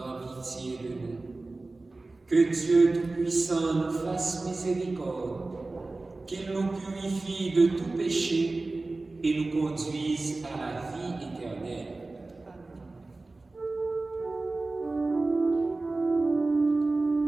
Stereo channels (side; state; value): left; quieter; 3.3 dB